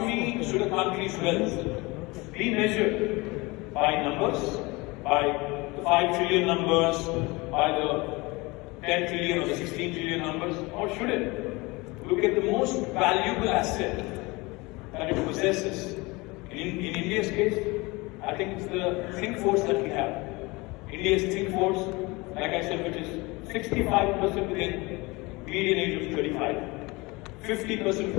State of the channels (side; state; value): right; quieter; 24.2 dB